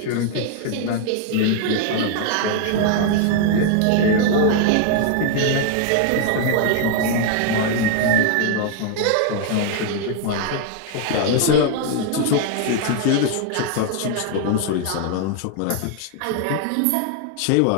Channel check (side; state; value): both; different; correlation 0.00